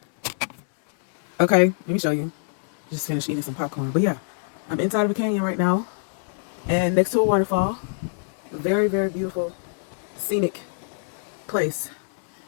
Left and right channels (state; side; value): silent; right; digital silence